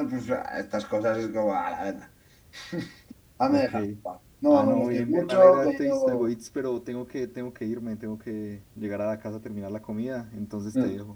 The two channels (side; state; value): both; identical; correlation 1.00